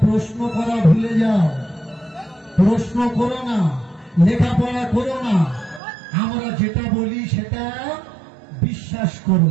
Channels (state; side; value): drops out; left; at 5.8 s